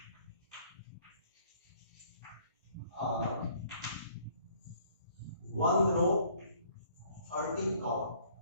are 1 row 13 column.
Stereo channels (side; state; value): both; inverted; correlation -0.60